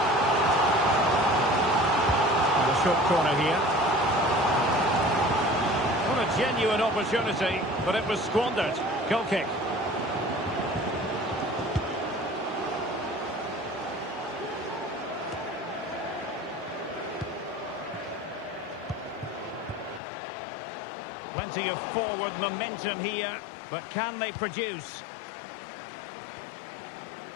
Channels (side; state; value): right; drops out; at 20.0 s